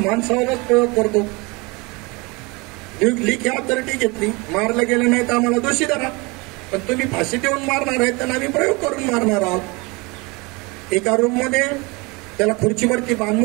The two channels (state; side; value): quieter; left; 26.5 dB